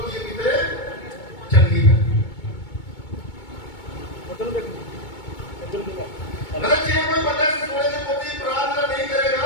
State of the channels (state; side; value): late; right; 2.2 ms